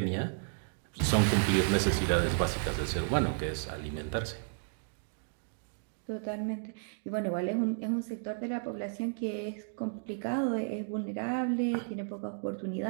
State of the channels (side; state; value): left; silent; digital silence